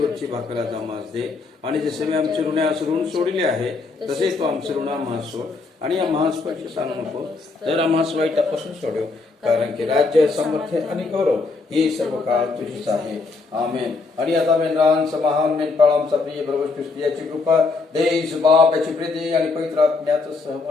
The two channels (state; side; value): quieter; right; 3.9 dB